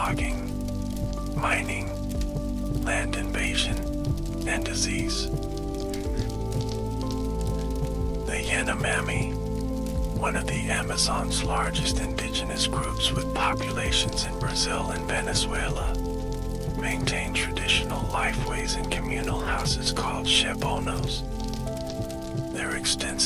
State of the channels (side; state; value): both; identical; correlation 1.00